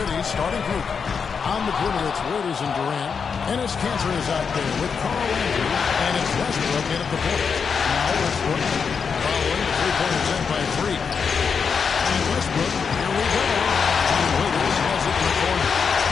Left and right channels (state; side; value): quieter; right; 6.0 dB